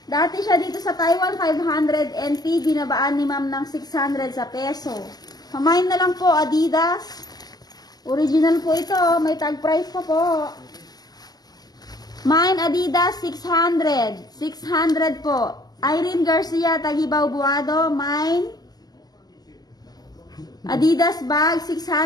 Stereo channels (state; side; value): late; right; 0.19 ms